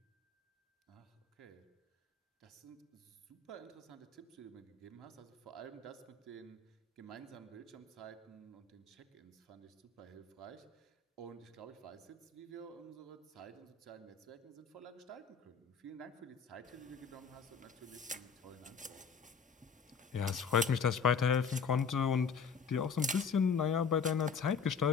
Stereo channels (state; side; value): quieter; right; 5.8 dB